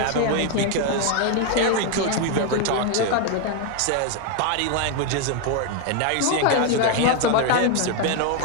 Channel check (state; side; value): different; both; correlation 0.01